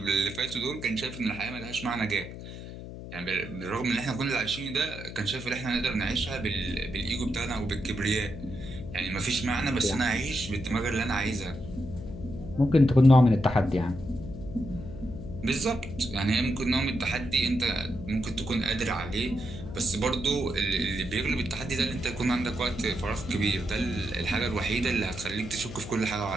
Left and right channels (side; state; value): left; noise; hum, 11 dB below the sound